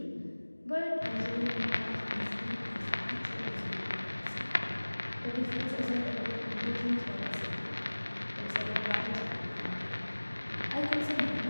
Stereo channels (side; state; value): both; inverted; correlation -1.00